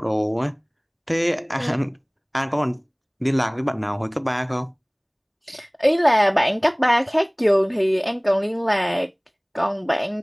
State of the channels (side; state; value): both; identical; correlation 1.00